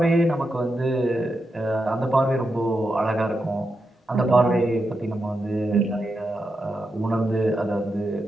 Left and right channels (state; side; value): normal; both; correlation 0.86